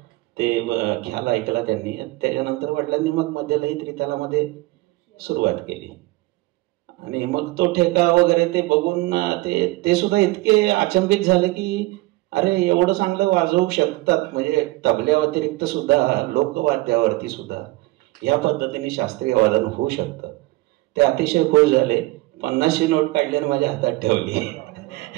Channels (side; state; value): left; quieter; 20.5 dB